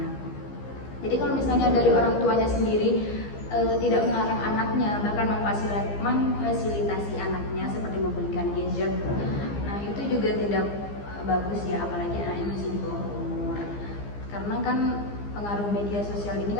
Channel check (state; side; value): late; right; 15 ms